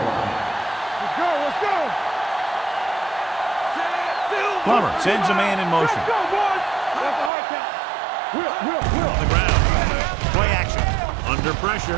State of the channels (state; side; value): drops out; left; at 7.3 s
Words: Let's go, let's go. Plummer sends a man in motion. Let's go, boys. That's a hard count. Will. On the ground. Play action. Under